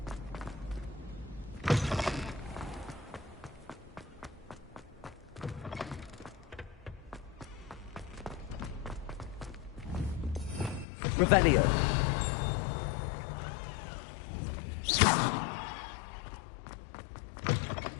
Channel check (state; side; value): drops out; right; at 10.9 s